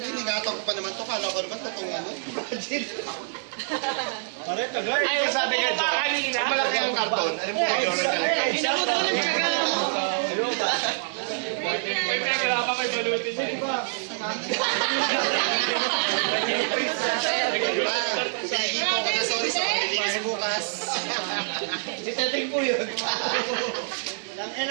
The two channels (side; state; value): left; silent; 61 dB below the other